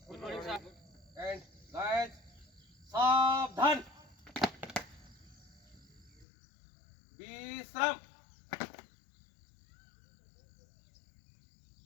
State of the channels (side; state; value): right; drops out; at 6.2 s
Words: Good morning, sir. And guys, सावधान. विश्राम.